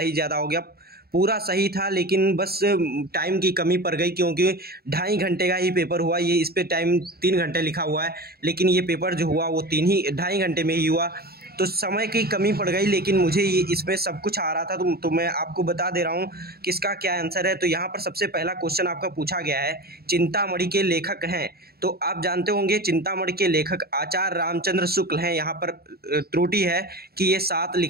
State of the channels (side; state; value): left; late; 0.45 ms